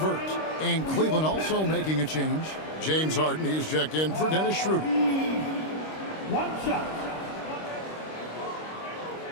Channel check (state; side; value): late; right; 26 ms